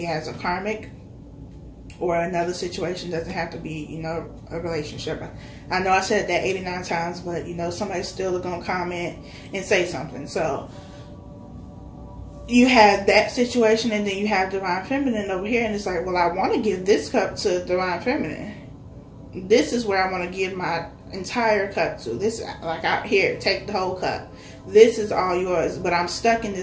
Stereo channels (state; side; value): identical; both; correlation 1.00